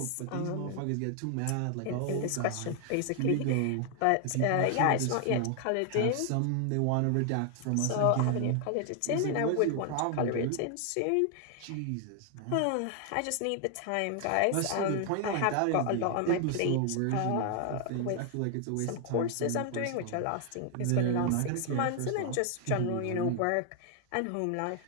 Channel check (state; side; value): different; both; correlation 0.00